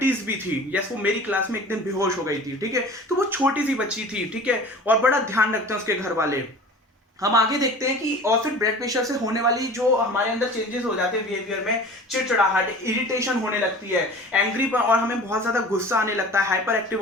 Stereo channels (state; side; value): normal; both; correlation 0.41